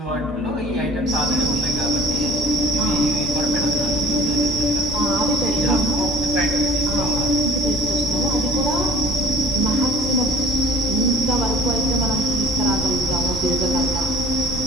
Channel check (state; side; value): normal; both; correlation 0.49